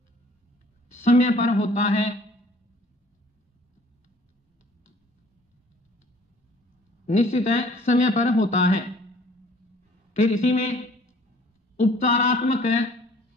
समय पर होता है। निश्चित है समय पर होता है। फिर इसी में उपचारात्मक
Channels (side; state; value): both; normal; correlation 0.55